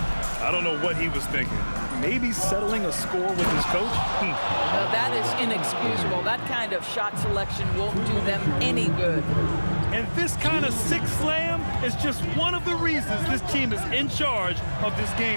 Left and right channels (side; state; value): both; inverted; correlation -1.00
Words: I don't know what he was thinking. Maybe settling a score with his coach? No, that is inexcusable. That kind of shot selection won't do them any good. And this kind of sick slam is just one of the reasons this team is in charge of this